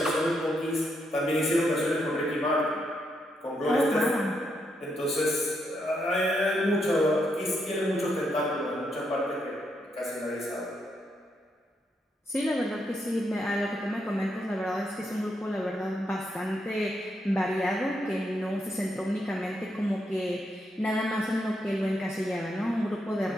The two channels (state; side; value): normal; both; correlation 0.80